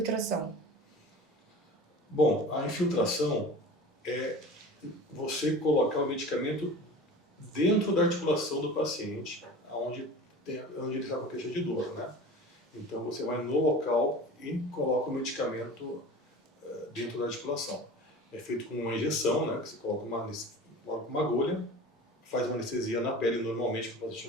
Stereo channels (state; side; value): normal; both; correlation 0.37